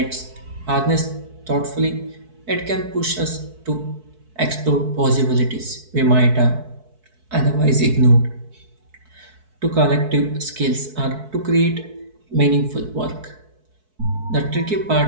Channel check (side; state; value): left; late; 4.6 ms